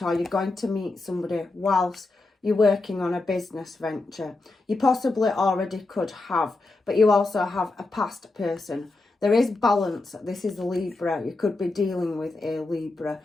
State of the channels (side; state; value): right; quieter; 3.2 dB